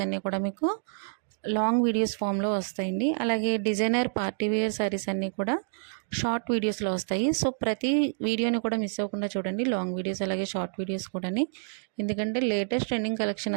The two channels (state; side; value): silent; left; digital silence